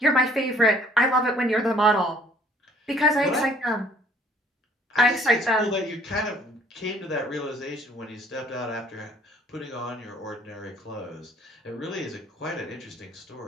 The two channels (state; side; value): normal; both; correlation 0.58